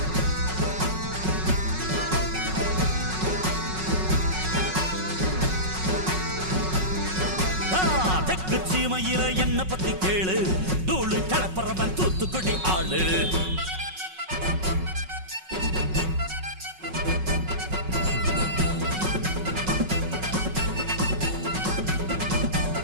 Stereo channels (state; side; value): late; left; 5.4 ms